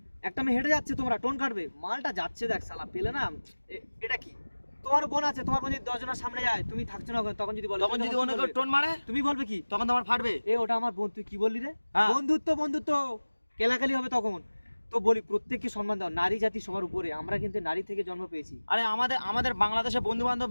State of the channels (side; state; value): both; inverted; correlation -1.00